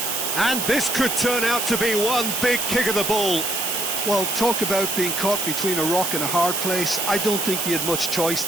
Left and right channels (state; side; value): noise; right; hiss, 1 dB below the sound